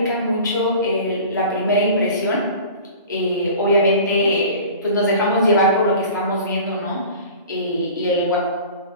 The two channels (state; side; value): inverted; both; correlation -0.41